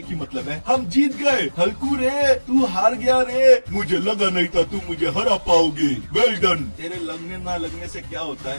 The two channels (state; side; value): inverted; both; correlation -1.00